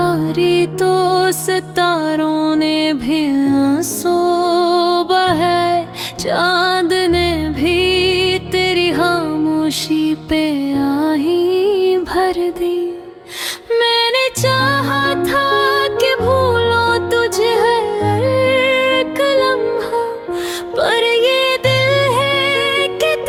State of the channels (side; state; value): both; identical; correlation 1.00